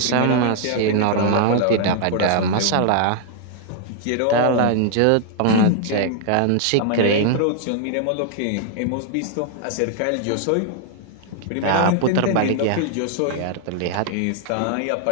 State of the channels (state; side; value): different; both; correlation 0.00